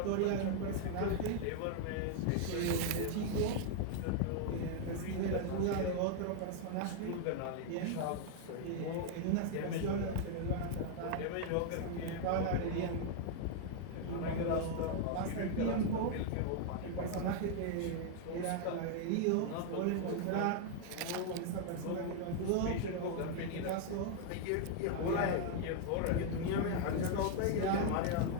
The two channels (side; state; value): both; different; correlation 0.00